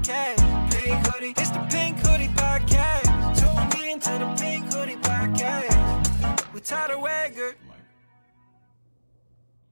Pink Hoodie, it's the Pink Hoodie Podcast. Tune in to the Pink Hoodie Podcast with Tyler Wagger.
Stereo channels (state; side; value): inverted; both; correlation -1.00